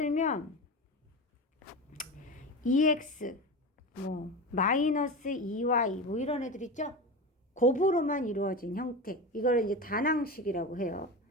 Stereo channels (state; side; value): normal; both; correlation 0.25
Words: EX 마이너스 2Y 이런 애들 있죠? 곱으로만 이루어진 형태. 이걸 이제 단항식이라고 해요.